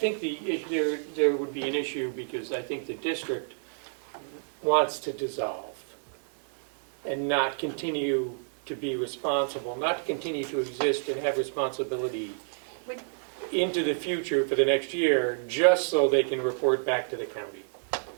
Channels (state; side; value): silent; left; digital silence